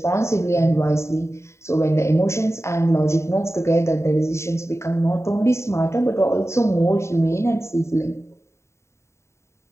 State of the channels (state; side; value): late; right; 0.13 ms